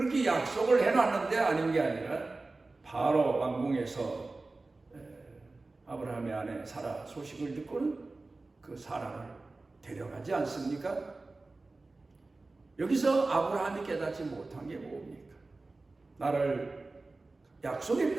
약속을 해놨는데 아닌 게 아니라 바로 왕궁에서 아브라함의 아내 사라 소식을 듣고는 그 사라를 데려가지 않습니까? 여기서 아브라함이 깨닫지 못한 게 뭡니까? 나를 약속의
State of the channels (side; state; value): left; quieter; 3.4 dB